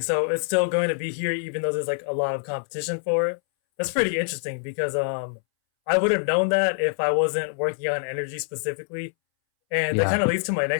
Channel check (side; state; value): right; silent; 62 dB below the other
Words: So it's still going to be here, even though there's like a lot of competition for it. That's pretty interesting because I would have known that if I wasn't working on energy specifically. And that Yeah. kind of leads to my